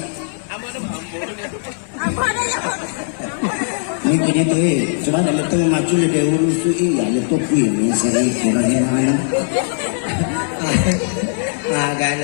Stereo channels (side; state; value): right; silent; digital silence